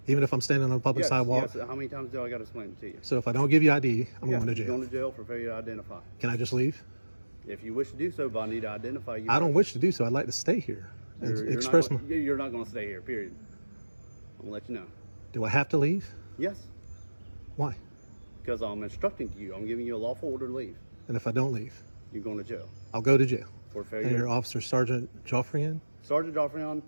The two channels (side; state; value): both; inverted; correlation -1.00